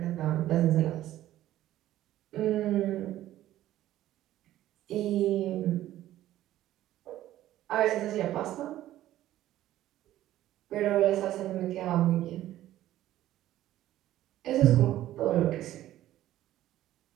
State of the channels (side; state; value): left; quieter; 13.8 dB